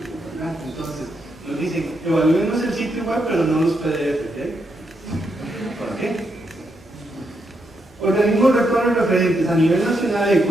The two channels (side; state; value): both; normal; correlation 0.80